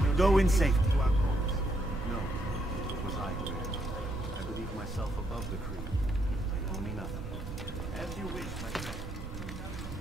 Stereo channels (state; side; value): noise; right; rumble, 9 dB below the sound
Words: Go in safety. No, it was I who erred. I believe myself above the creed. You owe me nothing. As you wish, my friend.